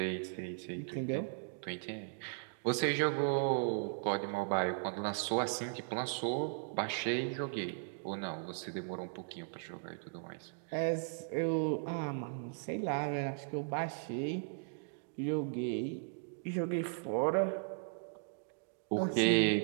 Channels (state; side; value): silent; left; digital silence